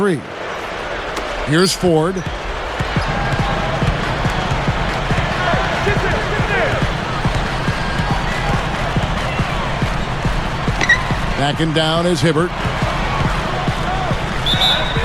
Here's Ford. Backing down is Hibbert.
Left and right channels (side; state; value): both; identical; correlation 1.00